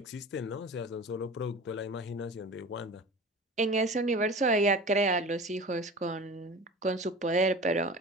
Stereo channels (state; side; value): normal; both; correlation 0.37